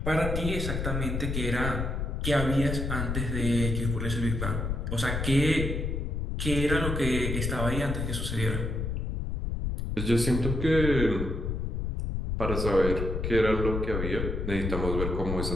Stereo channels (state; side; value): noise; left; rumble, 2 dB below the sound